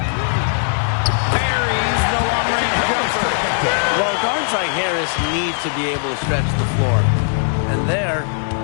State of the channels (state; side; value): silent; right; digital silence